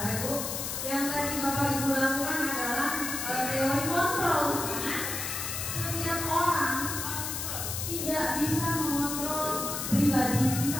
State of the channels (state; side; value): noise; left; hiss, 4 dB below the sound